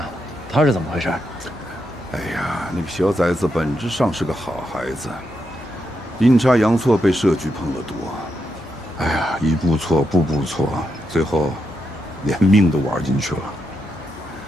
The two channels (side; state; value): both; normal; correlation 0.83